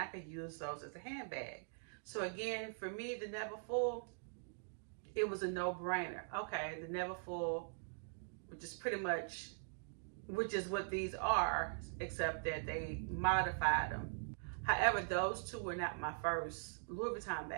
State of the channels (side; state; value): left; silent; digital silence